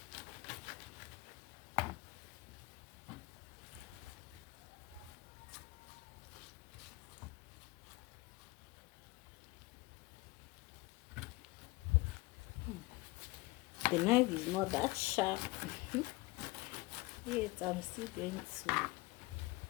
The knife is not that sharp. Yet I'm still going to see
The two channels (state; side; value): quieter; right; 22.5 dB